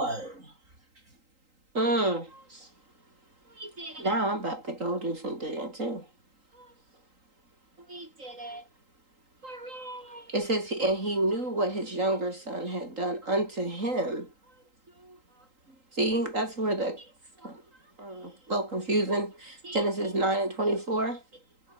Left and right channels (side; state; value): left; late; 3.8 ms